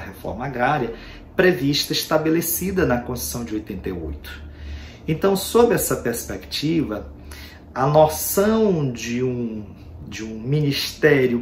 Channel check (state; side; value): identical; both; correlation 1.00